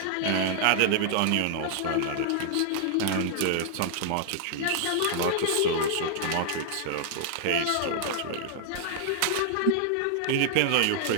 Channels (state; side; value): different; both; correlation -0.01